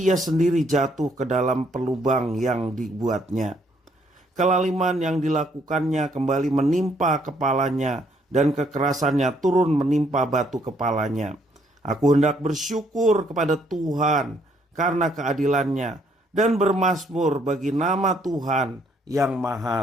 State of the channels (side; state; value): both; normal; correlation 0.68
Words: ia sendiri jatuh ke dalam pelubang yang dibuatnya. Kelaliman yang dilakukannya kembali menimpa kepalanya, dan kekerasannya turun menimpa batu kepalanya. Aku hendak bersyukur kepada Tuhan karena keadilannya, dan bermazmur bagi nama Tuhan yang